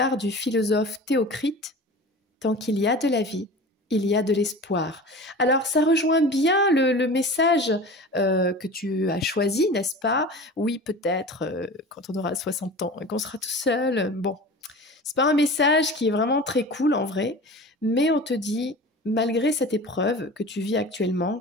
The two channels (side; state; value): both; normal; correlation 0.36